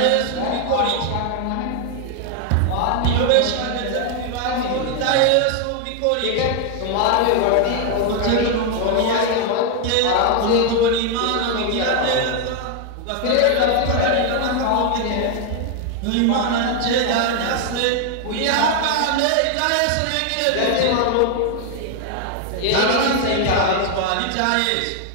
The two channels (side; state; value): both; different; correlation 0.00